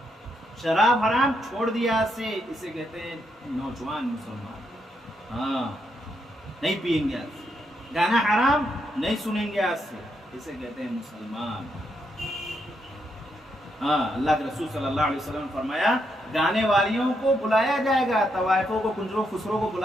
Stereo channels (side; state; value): both; normal; correlation 0.79